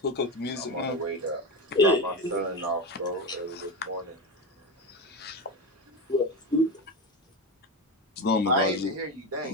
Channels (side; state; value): both; normal; correlation 0.19